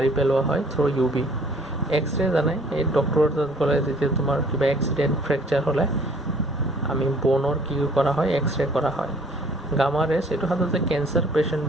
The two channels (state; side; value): normal; both; correlation 0.56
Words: পেলোৱা হয় থ্ৰু UV। এক্সৰে জানাই, এই ডক্টৰৰ তাত গ'লে যেতিয়া তোমাৰ কিবা এক্সিডেণ্ট, ফ্ৰেকচাৰ হ'লে আমি বনৰ কি কৰা হয়? এক্সৰে কৰা হয়। গামা ৰেজ, এইটো সাধাৰণতে কেঞ্চাৰ